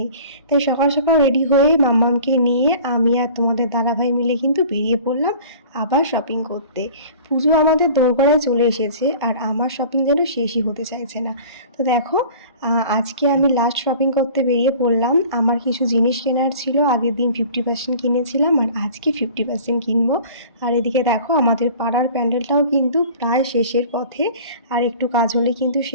তাই সকাল সকাল রেডি হয়ে মাম্মামকে নিয়ে আমি আর তোমাদের দাদাভাই মিলে কিন্তু বেরিয়ে পড়লাম আবার শপিং করতে। পুজো আমাদের দোরগোড়ায় চলে এসেছে আর আমার শপিং যেন শেষই হতে চাইছে না। তো দেখো, আজকে আমি লাস্ট শপিং করতে বেরিয়ে পড়লাম। আমার কিছু জিনিস কেনার ছিল, আগের দিন 50% কিনেছিলাম আর আজকে 50% কিনবো। আর এদিকে দেখো, আমাদের পাড়ার প্যান্ডেলটাও কিন্তু প্রায় শেষের পথে, আর একটু কাজ হলে কিন্তু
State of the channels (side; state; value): both; inverted; correlation -0.45